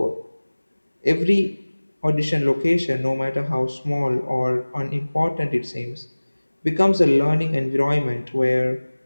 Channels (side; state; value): both; inverted; correlation -1.00